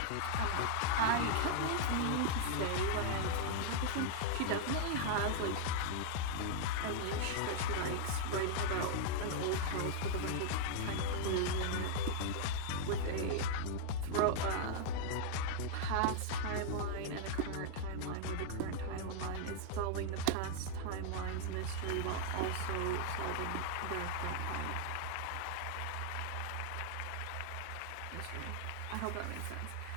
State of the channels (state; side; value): different; both; correlation -0.01